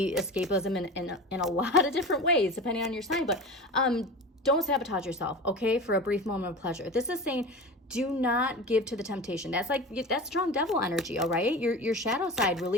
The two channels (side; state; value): both; normal; correlation 0.31